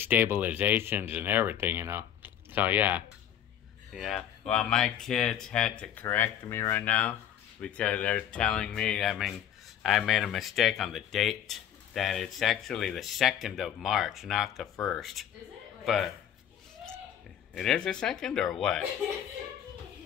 and everything, So, yeah. Well, my kids had to correct me right now because they're telling me, I made a mistake on the date, that it's actually the 2nd of March, not the 1st. Is it? But it is the 2nd or what?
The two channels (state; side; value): quieter; right; 10.1 dB